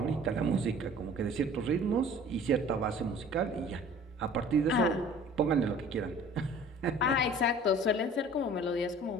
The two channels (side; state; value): both; normal; correlation 0.47